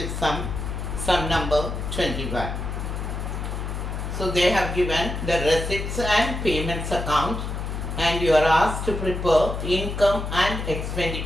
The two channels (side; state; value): left; noise; hum, 4 dB below the sound